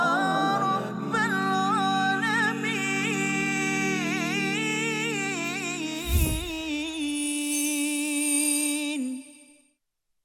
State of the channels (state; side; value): identical; both; correlation 1.00